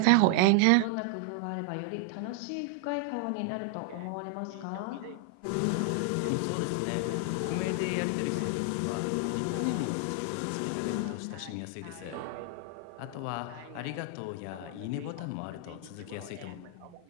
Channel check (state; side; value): different; both; correlation 0.00